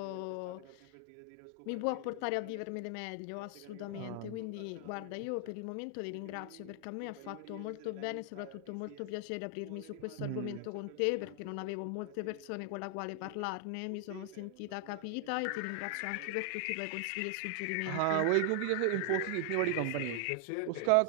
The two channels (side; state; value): both; different; correlation 0.00